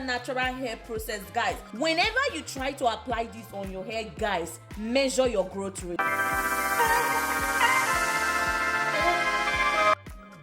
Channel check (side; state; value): both; identical; correlation 1.00